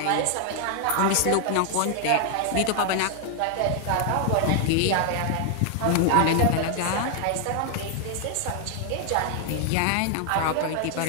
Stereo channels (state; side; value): different; both; correlation 0.00